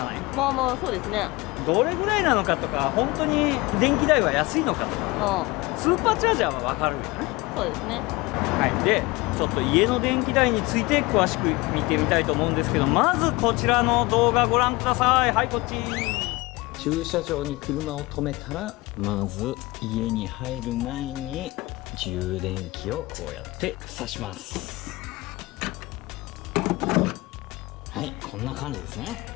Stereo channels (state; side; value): quieter; right; 22.3 dB